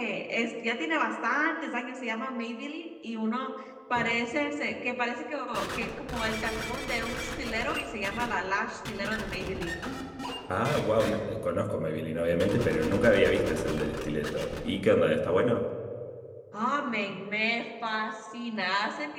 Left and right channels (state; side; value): identical; both; correlation 1.00